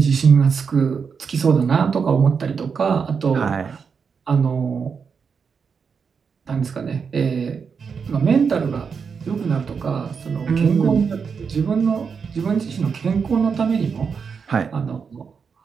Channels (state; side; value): quieter; left; 6.0 dB